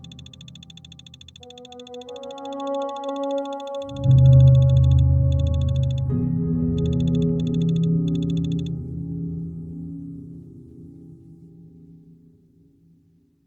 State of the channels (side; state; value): both; identical; correlation 1.00